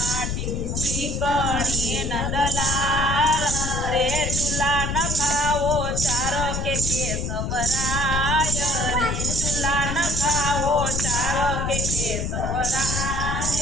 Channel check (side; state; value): left; noise; rumble, 2 dB below the sound